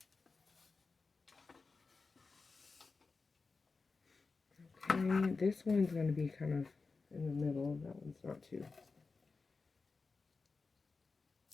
Okay, this one's going to be kind of in the middle. That one's not too.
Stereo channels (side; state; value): right; quieter; 4.3 dB